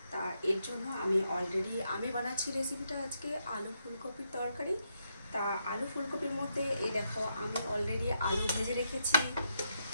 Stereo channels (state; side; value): inverted; both; correlation -0.80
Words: তা এর জন্য আমি বানাচ্ছি রেসিপিটা আজকে আলু ফুলকপির তরকারি। তা আলু ফুলকপির মধ্যে এই দেখো আমি অলরেডি আলু ভেজে রেখেছি।